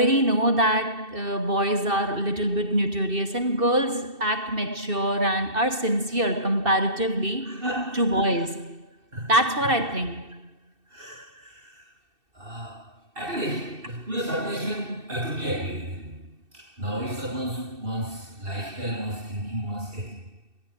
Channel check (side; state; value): left; late; 2.6 ms